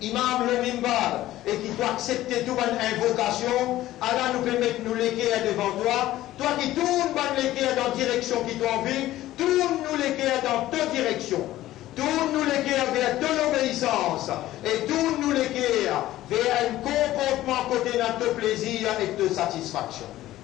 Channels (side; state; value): right; quieter; 15.0 dB